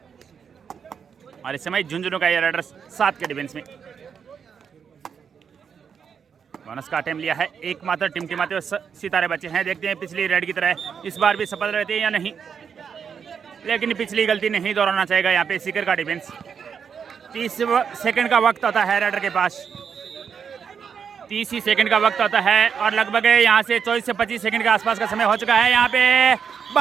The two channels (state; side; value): quieter; left; 6.9 dB